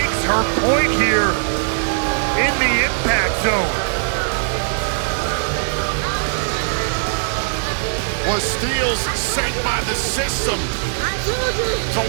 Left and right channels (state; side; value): silent; left; digital silence